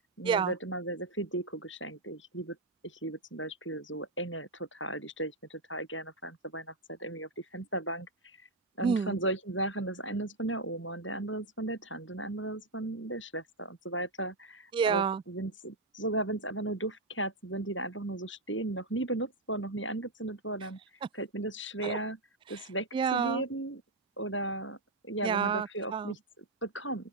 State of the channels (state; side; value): quieter; left; 3.0 dB